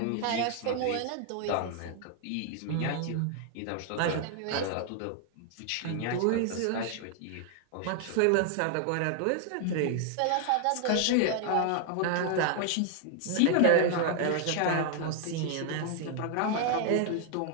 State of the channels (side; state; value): both; different; correlation 0.00